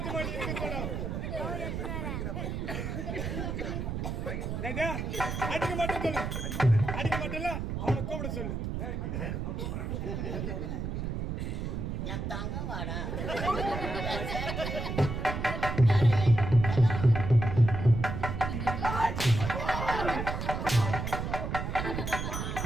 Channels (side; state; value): right; noise; rumble, 3 dB below the sound